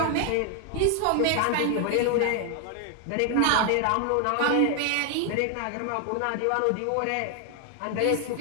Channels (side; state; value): both; different; correlation 0.00